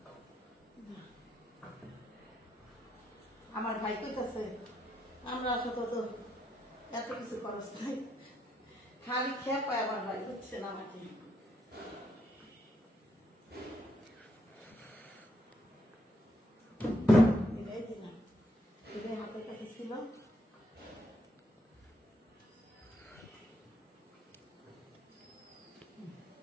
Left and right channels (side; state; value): both; normal; correlation 0.76